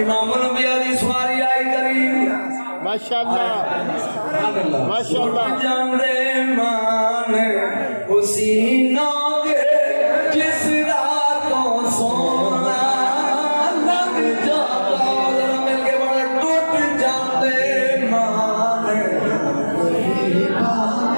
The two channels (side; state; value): both; inverted; correlation -1.00